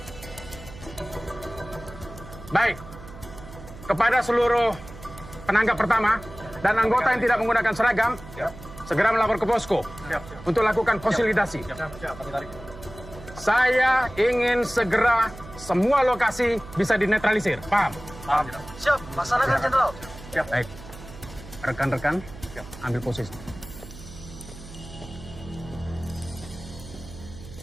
Baik. Kepada seluruh penanggap pertama dan anggota yang tidak menggunakan seragam, segera melapor ke posko untuk lakukan konsolidasi. Saya ingin segera semua lokasi bisa dinetralisir. Paham? Paham. Siap, laksanakan Jenderal. Baik. Rekan-rekan, ambil posisi.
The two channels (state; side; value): noise; right; hum, 16 dB below the sound